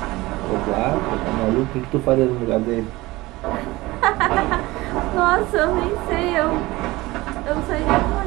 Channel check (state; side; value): quieter; left; 20.0 dB